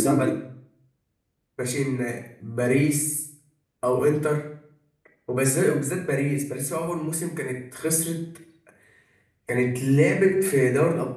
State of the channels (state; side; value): identical; both; correlation 1.00